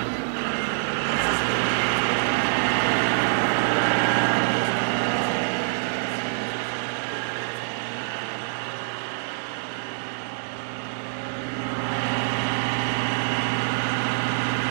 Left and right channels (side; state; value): left; silent; digital silence